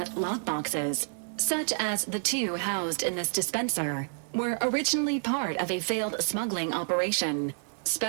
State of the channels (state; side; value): silent; left; 57 dB below the other